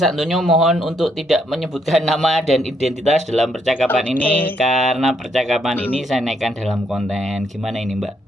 Mohon untuk tidak menyebutkan nama dan identitas dalam percakapan ini Oke. karena percakapan Hmm, ini saya naikkan dalam konten. Gimana ini, Mbak?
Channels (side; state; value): both; normal; correlation 0.74